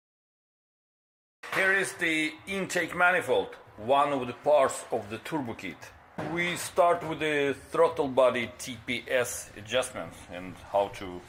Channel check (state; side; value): identical; both; correlation 1.00